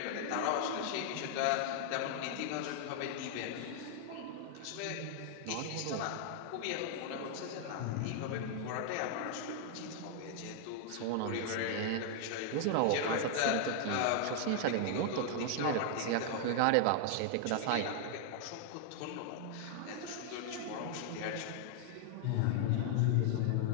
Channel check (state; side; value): different; both; correlation 0.00